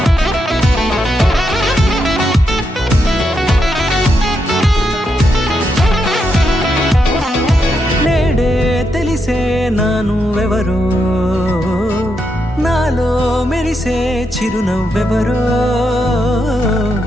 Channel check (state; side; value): normal; both; correlation 0.82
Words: నేడే తెలిసే నా నువ్వెవరో, నాలో మెరిసే చిరునవ్వెవరో.